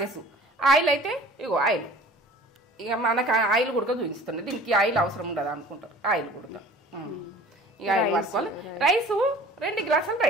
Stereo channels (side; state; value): both; normal; correlation 0.46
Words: ఆయిల్ అయితే ఇగో ఆయిల్, ఇక మనకు ఆయిల్ కూడా చూపిస్తుంది. దీనికి ఆయిల్ అవసరం ఉండదు అనుకుంటారు, ఆయిల్ కూడా. ఇక ఆయిల్ వాడుకోవాలి. రైసు 2 గ్లాసుల